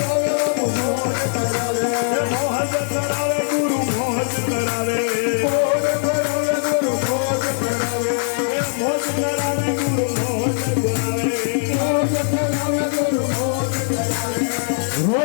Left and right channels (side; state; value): right; silent; digital silence